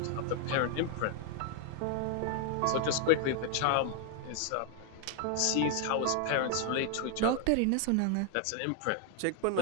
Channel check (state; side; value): different; both; correlation 0.00